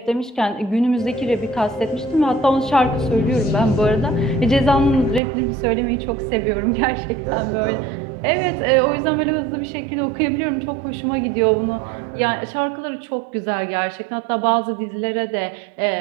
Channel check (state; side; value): drops out; left; at 5.2 s